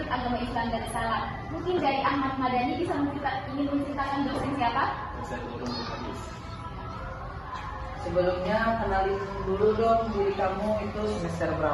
Agama Islam Darussalam. Mungkin dari Ahmad Madani bisa ingin menceritakan dosen siapa? Dosen Ulumul Hadis. Sebelumnya kenalin dulu dong diri kamu itu semester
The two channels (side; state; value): both; identical; correlation 1.00